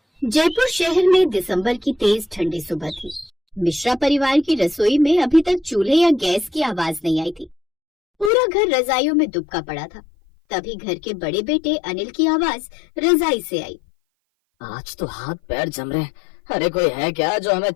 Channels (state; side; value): drops out; right; at 8.3 s